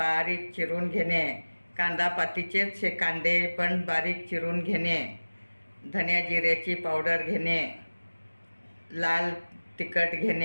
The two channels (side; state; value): both; inverted; correlation -1.00